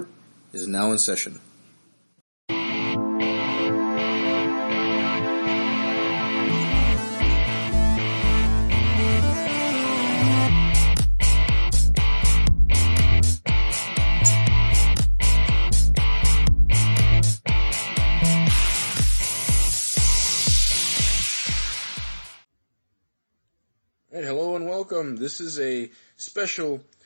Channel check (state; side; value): inverted; both; correlation -1.00